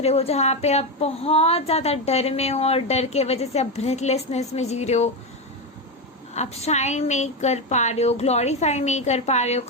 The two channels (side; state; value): both; normal; correlation 0.12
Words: हो, जहाँ पे आप बहुत ज़्यादा डर में हो, और डर के वजह से आप ब्रेथलेसनेस में जी रहे हो, आप शाइन नहीं कर पा रहे हो, ग्लोरीफाई नहीं कर पा रहे हो